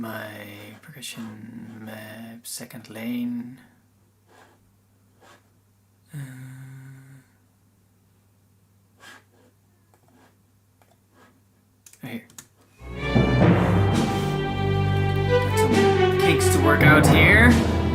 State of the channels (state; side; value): identical; both; correlation 1.00